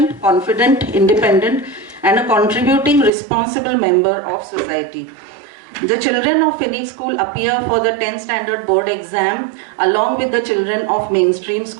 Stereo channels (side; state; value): left; drops out; at 3.1 s